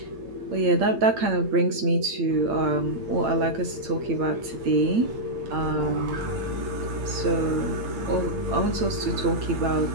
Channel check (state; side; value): late; left; 8.8 ms